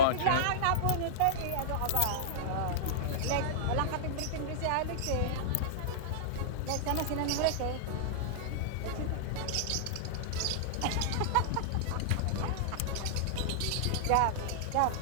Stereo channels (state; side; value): different; both; correlation -0.02